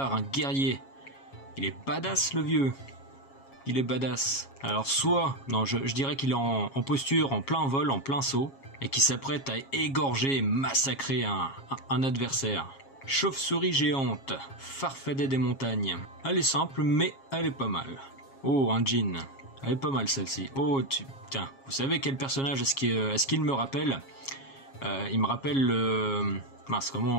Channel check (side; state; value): right; late; 7.3 ms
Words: un guerrier. Il est badass le vieux. Il est badass. Alors soit, non je dirais qu'il est en posture, en plein vol, en plein saut. Et qui s'apprête à égorger et massacrer un adversaire. Chauve-souris géante, Farfadet des montagnes. Elle est simple, mais elle est pas mal. Oh, un djinn. Elle est pas mal celle-ci. Oh, tiens, vous savez quel personnage est-ce qu'il me rappelle? Il me rappelle le... Mince,